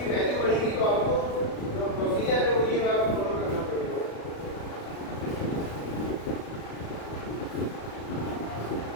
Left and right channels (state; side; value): late; right; 36 ms